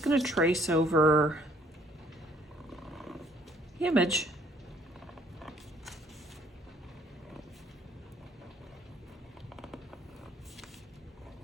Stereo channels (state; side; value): normal; both; correlation 0.62